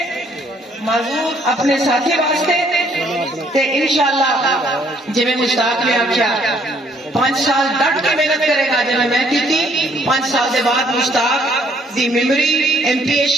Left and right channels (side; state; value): both; normal; correlation 0.65